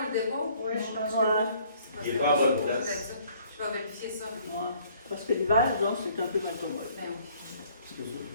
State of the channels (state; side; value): inverted; both; correlation -0.60